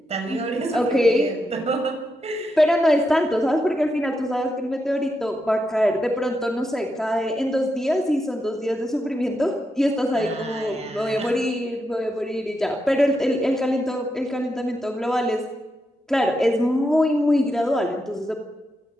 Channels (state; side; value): normal; both; correlation 0.84